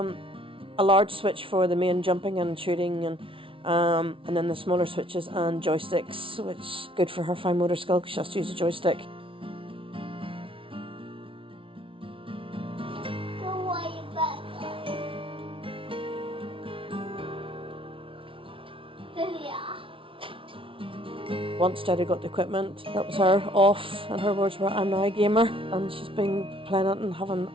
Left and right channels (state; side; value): late; left; 0.25 ms